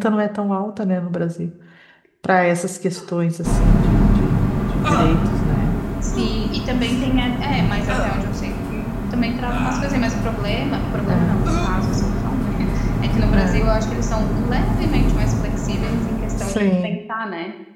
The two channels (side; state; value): both; identical; correlation 1.00